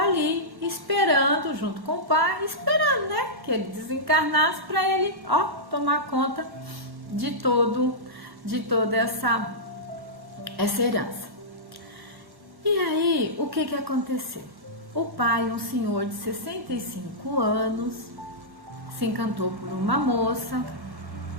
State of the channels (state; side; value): late; left; 1.1 ms